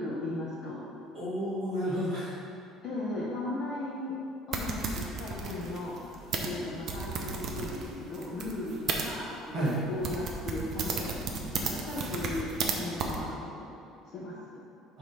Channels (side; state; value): both; normal; correlation 0.52